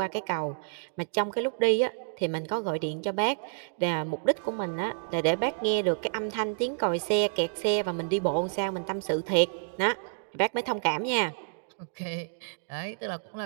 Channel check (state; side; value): silent; left; digital silence